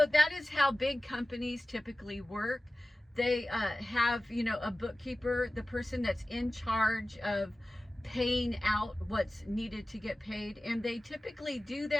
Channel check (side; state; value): both; normal; correlation 0.96